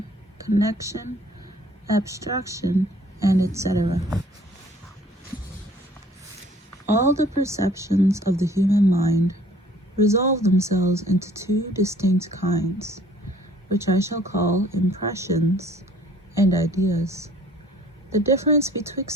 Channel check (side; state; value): both; normal; correlation 0.55